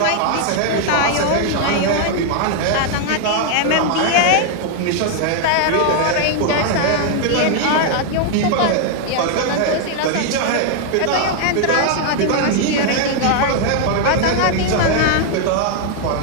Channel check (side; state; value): both; different; correlation 0.00